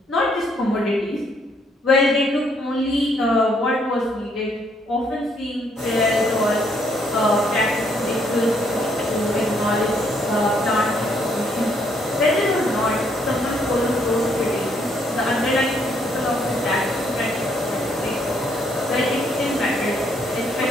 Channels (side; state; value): both; normal; correlation 0.70